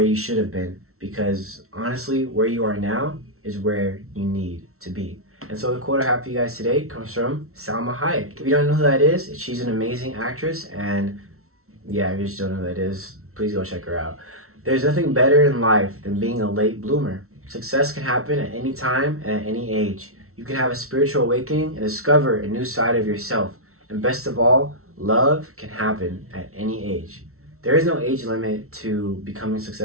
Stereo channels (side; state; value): left; late; 0.63 ms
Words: should have been, because honestly, where you are now is where you need to be. And so the quote I have for you guys today comes from Salma Hayek. If you don't know who that is, she's an amazing actress. And yeah, if you just don't know who that is, please go check her out. There's nothing better in life than being a late bloomer. Success can happen at any time and at any age. You can have a spiritual awakening and discover a new side of yourself. And best of all, love can happen at any age. There is no age limit to becoming